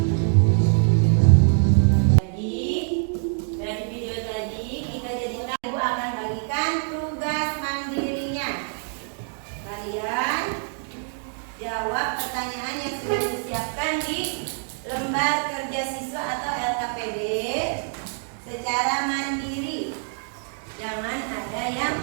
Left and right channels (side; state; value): left; silent; digital silence